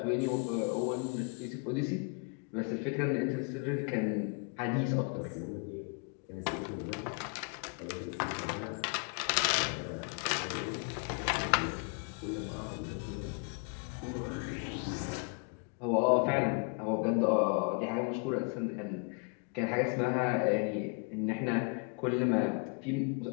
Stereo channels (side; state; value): right; quieter; 35.7 dB